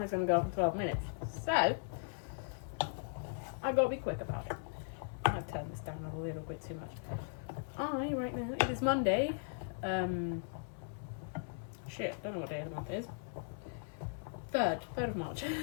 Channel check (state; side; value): silent; right; 52 dB below the other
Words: is going to go off in 12 minutes. So, I've got to be quick about it. I've turned this down a little bit too much. Right now, it is Monday. Shit, don't know what day of the month it is. 3rd of March.